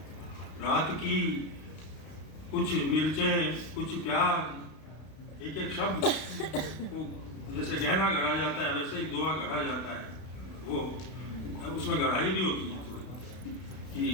रात की, कुछ मिर्चें कुछ प्याज। एक एक शब्द को जैसे गहना गढ़ा जाता है वैसे ही दोहा गढ़ा जाता है। वो उसमें गढ़ाई भी होती है थोड़ी कि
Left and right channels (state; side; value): late; right; 32 ms